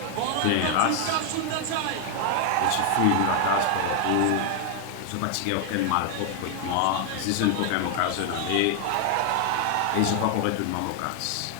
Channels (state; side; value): different; both; correlation 0.00